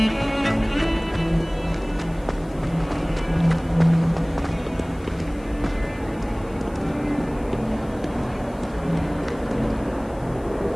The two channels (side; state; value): left; noise; hiss, 27 dB below the sound